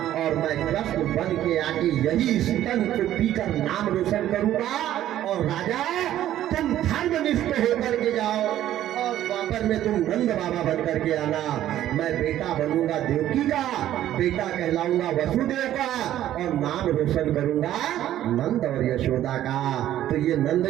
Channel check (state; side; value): quieter; left; 12.5 dB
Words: और मैं कृष्ण बन के आके यही स्तन को पीकर नाम रोशन करूंगा। और राजा तुम धर्मनिष्ठ होकर के जाओ और द्वापर में तुम नंद बाबा बन करके आना। मैं बेटा बनूंगा देवकी का, बेटा कहलाऊंगा वसुदेव का और नाम रोशन करूंगा नंद और यशोदा का। तो ये नंद